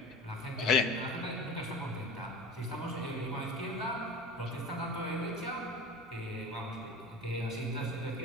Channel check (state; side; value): normal; both; correlation 0.36